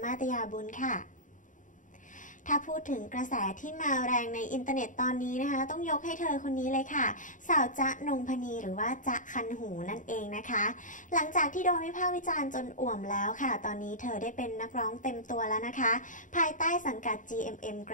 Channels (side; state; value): right; late; 0.37 ms